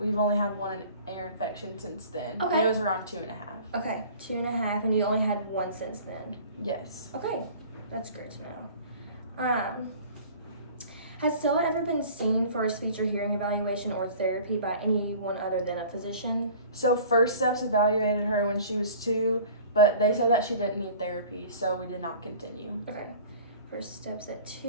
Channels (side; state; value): both; inverted; correlation -0.46